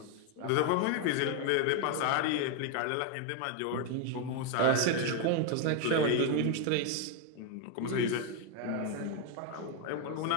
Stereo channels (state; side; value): different; both; correlation 0.01